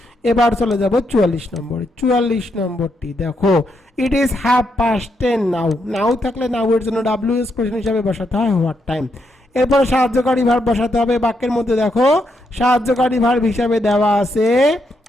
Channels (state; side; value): normal; both; correlation 0.79